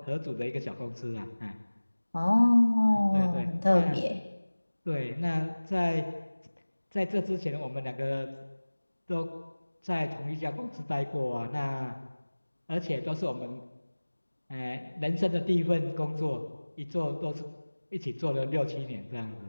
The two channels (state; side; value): inverted; both; correlation -1.00